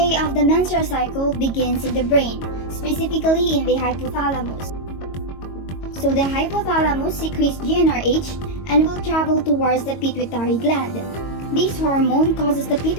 of the menstrual cycle begins in the brain, specifically in the hypothalamus. So the hypothalamus secretes GnRH and will travel towards the pituitary gland. This hormone causes the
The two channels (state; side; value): late; right; 22 ms